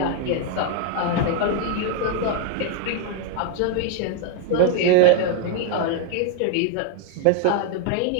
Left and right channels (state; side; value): different; both; correlation 0.00